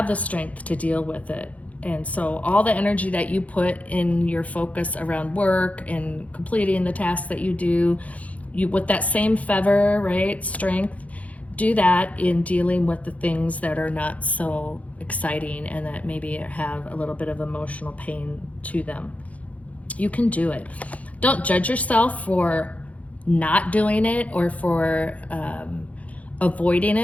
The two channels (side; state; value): right; late; 0.068 ms